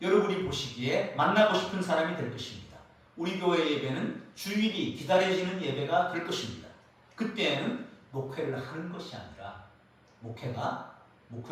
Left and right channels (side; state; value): both; identical; correlation 1.00